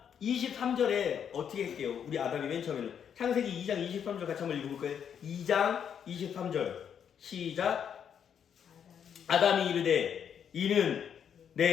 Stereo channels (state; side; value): quieter; right; 8.2 dB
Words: 23절에 어떻게 할게요? 우리 아담이 맨 처음에는 창세기 2장 23절 같이 한번 읽어볼까요? 2장 23절 시작. 아담이 이르되 이는